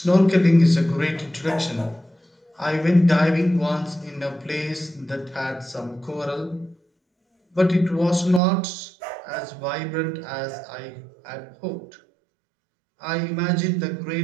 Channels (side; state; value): left; drops out; at 8.4 s